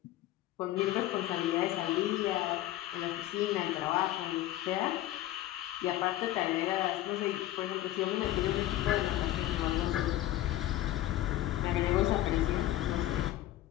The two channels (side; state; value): right; quieter; 14.5 dB